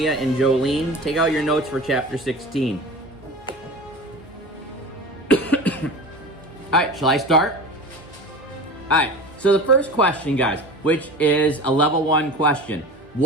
and Jolene. Take out your notes for chapter 16. All right, shall I start? All right, so the first question, guys, which is a level 1 question.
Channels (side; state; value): right; noise; hum, 28 dB below the sound